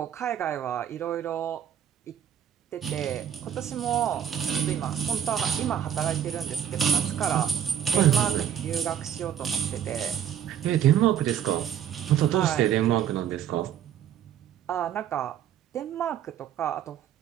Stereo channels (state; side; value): quieter; left; 9.6 dB